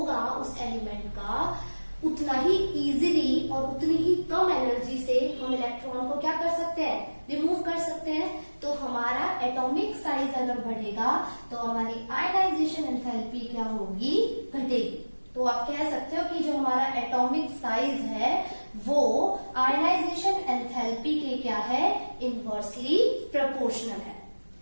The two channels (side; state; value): both; inverted; correlation -1.00